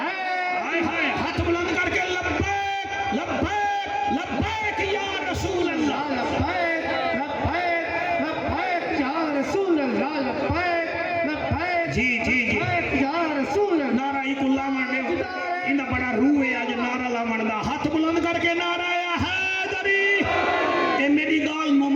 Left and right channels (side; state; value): both; identical; correlation 1.00